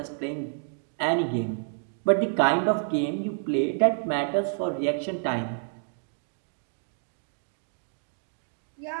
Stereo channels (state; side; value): silent; left; 59 dB below the other